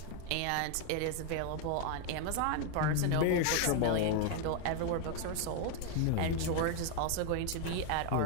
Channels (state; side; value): different; both; correlation 0.01